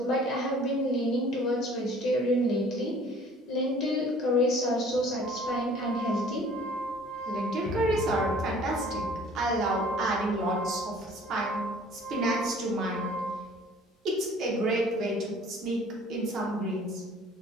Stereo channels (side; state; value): both; normal; correlation 0.52